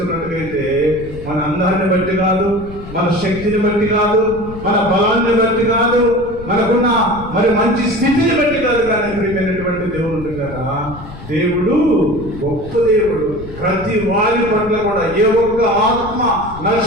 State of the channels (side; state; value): left; noise; rumble, 14 dB below the sound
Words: మన అందాన్ని బట్టి కాదు, మన శక్తిని బట్టి కాదు, మన బలాన్ని బట్టి కాదు, మనకున్న మరి మంచి స్థితిని బట్టి కాదు, కానీ ప్రియమైనటువంటి దేవుడు కదా, దేవుడు గొప్ప దేవుడు. ప్రతి వారి పట్ల కూడా ఏ ఒక్క ఆత్మ